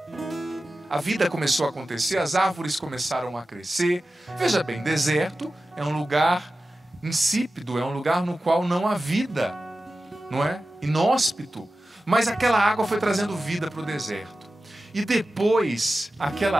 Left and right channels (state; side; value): normal; both; correlation 0.94